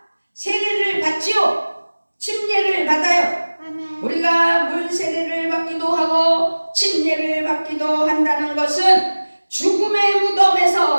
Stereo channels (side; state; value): both; inverted; correlation -1.00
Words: 세례를 받지요. 침례를 받아요. 우리가 물 세례를 받기도 하고 침례를 받기도 한다는 것은 죽음의